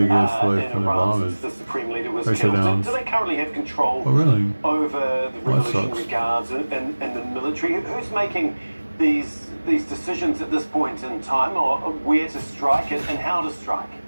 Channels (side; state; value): both; inverted; correlation -1.00